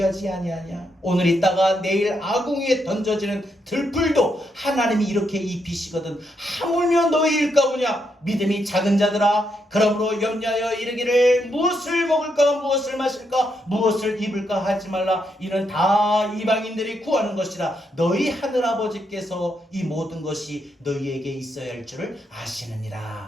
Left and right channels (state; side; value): normal; both; correlation 0.79